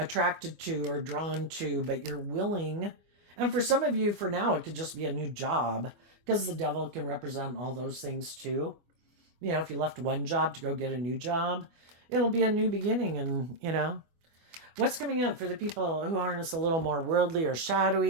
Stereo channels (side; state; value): left; late; 24 ms